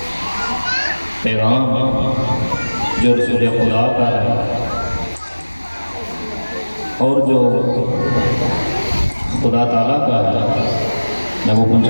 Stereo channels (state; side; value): inverted; both; correlation -1.00